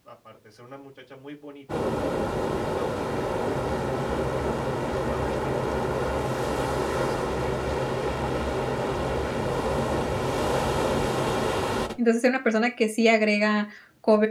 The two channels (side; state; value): both; identical; correlation 1.00